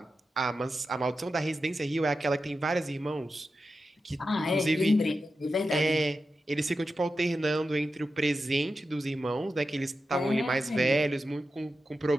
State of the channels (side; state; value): both; normal; correlation 0.90